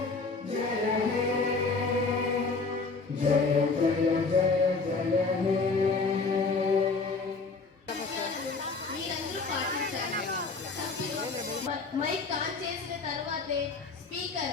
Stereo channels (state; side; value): quieter; right; 4.2 dB